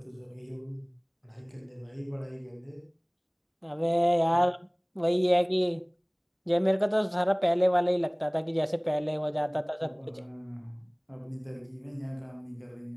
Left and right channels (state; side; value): identical; both; correlation 1.00